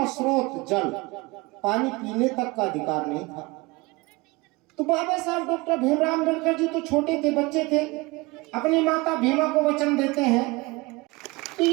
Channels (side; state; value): left; quieter; 23.9 dB